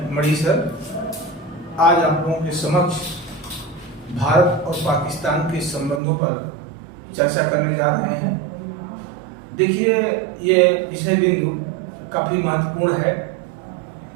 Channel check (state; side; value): drops out; left; at 6.0 s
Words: मणि सर आज आप लोगों के समक्ष भारत और पाकिस्तान के संबंधों पर चर्चा करने जा रहे हैं। देखिए, ये विषय बिंदु काफ़ी महत्वपूर्ण है